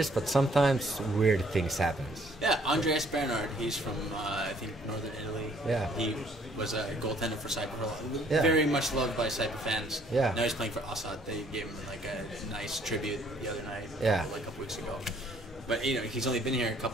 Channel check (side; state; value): both; normal; correlation 0.62